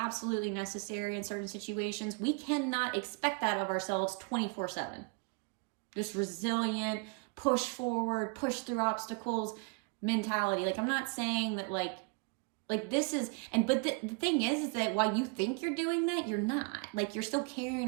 necessary in certain situations, we cannot expect that of ourselves 24/7. This resilient, push forward, push through obstacles mentality. Like, I'm not saying that like this is, but the thing is that while you think you're doing that, you're not. Like, you're still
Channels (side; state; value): left; quieter; 33.2 dB